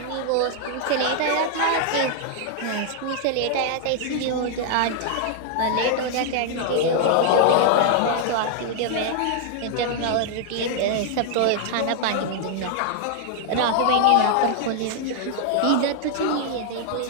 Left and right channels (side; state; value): both; different; correlation 0.00